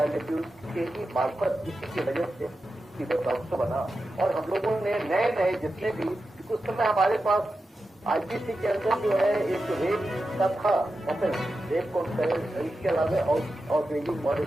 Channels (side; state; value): both; normal; correlation 0.91